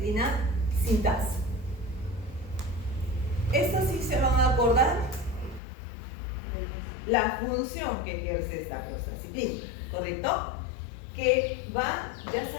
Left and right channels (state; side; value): drops out; right; at 5.6 s